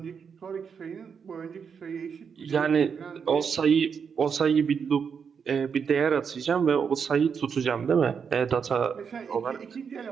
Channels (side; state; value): left; quieter; 6.5 dB